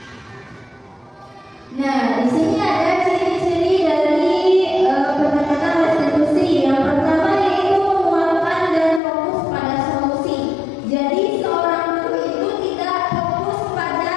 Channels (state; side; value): drops out; right; at 9.0 s